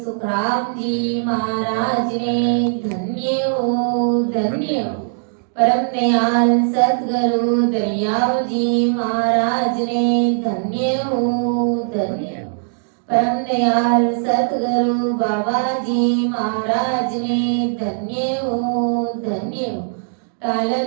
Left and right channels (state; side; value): silent; left; digital silence